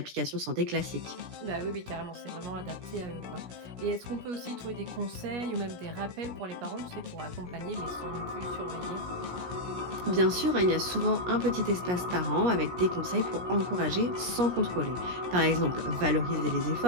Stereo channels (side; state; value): left; late; 17 ms